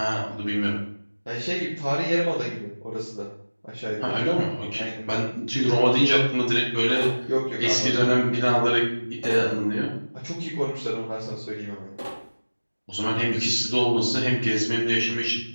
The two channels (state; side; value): inverted; both; correlation -1.00